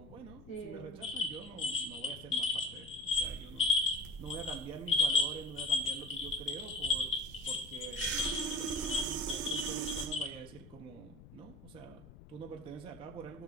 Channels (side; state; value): left; noise; rumble, 19 dB below the sound